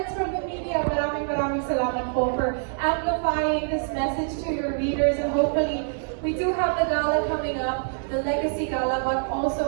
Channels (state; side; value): silent; left; digital silence